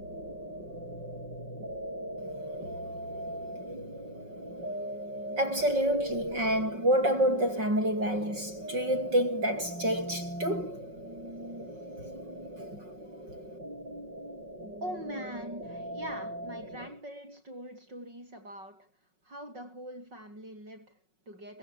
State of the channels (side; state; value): left; late; 5.4 ms